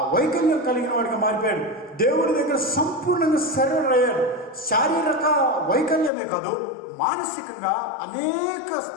వైకల్యం కలిగిన వాడిగా మారిపోయాడు. దేవుని దగ్గర సంపూర్ణంగా సరెండర్ అయ్యాడు. శారీరక వైకల్యమే కాదు, మానసికంగా అనేక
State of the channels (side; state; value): right; drops out; at 6.1 s